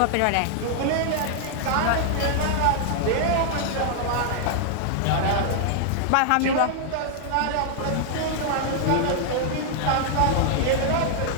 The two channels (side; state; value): both; different; correlation -0.01